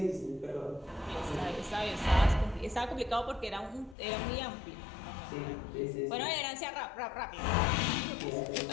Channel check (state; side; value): drops out; right; at 4.0 s